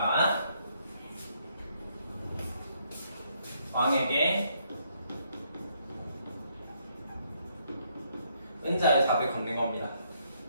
왕에게 은자의 삽을 건넨 겁니다.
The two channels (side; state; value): both; inverted; correlation -0.72